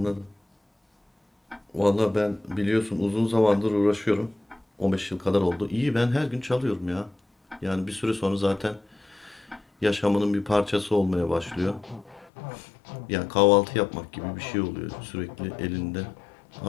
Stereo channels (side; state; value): right; drops out; at 12.3 s